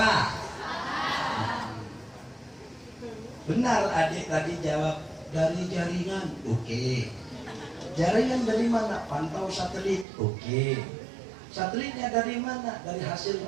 Benar adik tadi jawab dari jaringan. Oke. Jaringan dari mana? Pantau satelit. Oke. Satelitnya dari mana? Dari hasil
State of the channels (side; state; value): left; drops out; at 10.1 s